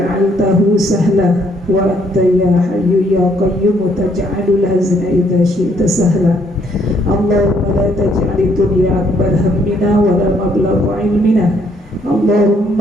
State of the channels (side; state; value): both; normal; correlation 0.68